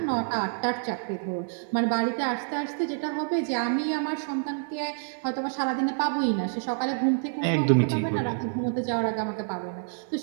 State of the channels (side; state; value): left; silent; 60 dB below the other